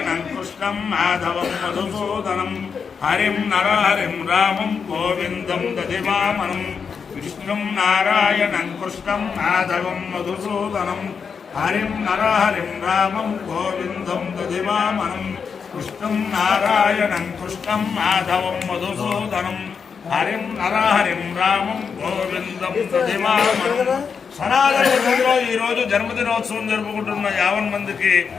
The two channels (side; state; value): right; quieter; 6.1 dB